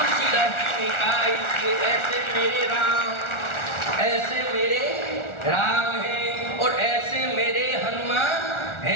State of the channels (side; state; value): right; late; 1.4 ms